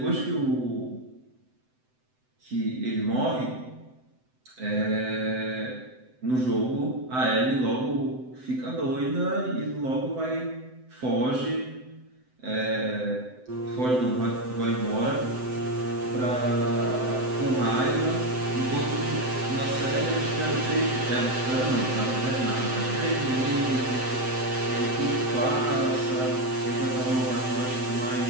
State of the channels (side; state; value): left; late; 7.8 ms